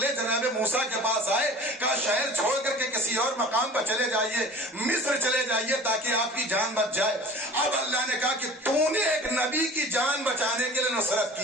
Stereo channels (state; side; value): normal; both; correlation 0.42